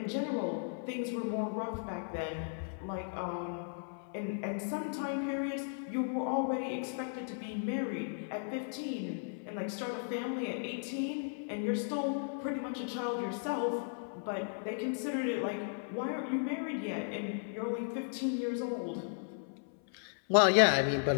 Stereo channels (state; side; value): silent; right; 54 dB below the other